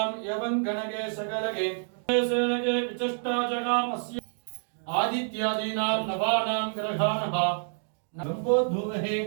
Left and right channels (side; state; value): left; silent; digital silence